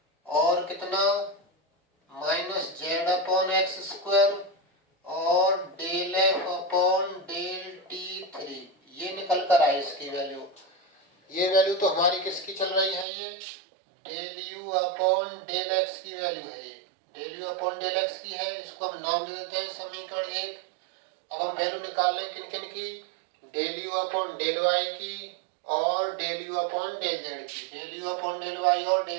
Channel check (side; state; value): left; drops out; at 13.1 s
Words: और कितना? माइनस z अपॉन x² और del F upon del t3। ये निकल कर आई इसकी वैल्यू। ये वैल्यू तो हमारी किसकी चल रही है? ये del u upon del x की वैल्यू है। ये del u upon del x की है। इसको हम नाम दे देते हैं समीकरण 1। अब हम वैल्यू निकाल लें किन किन की? Del u upon del y की और del u upon del z की। Del u upon del y और